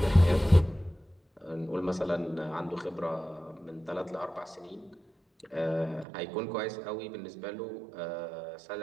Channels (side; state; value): left; drops out; at 6.1 s